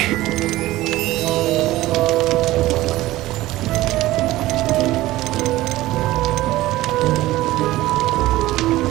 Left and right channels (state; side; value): quieter; left; 16.9 dB